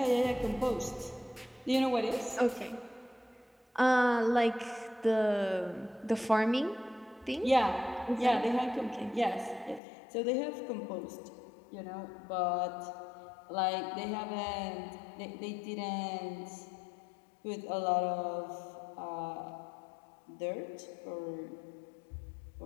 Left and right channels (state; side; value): drops out; right; at 9.8 s